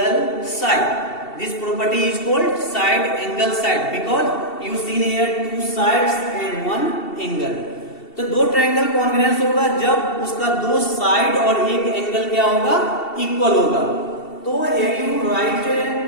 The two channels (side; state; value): right; late; 2.7 ms